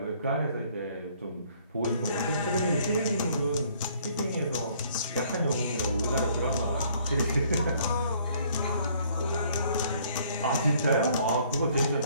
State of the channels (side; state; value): both; inverted; correlation -0.61